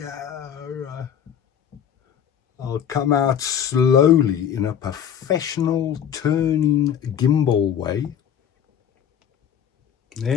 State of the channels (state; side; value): quieter; right; 8.8 dB